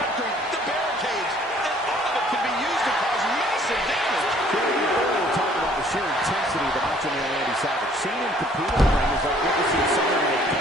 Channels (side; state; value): both; normal; correlation 0.58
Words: the barricades, and all of it can be used to cause massive damage. Earlier talking about the sheer intensity of the Macho Man Randy Savage. Seeing him compete in the ring is like witnessing someone in a